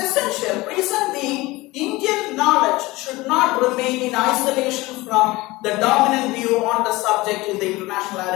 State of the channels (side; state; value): right; quieter; 20.6 dB